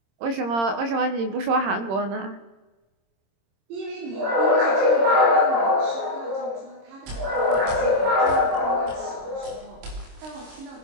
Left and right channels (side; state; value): left; late; 26 ms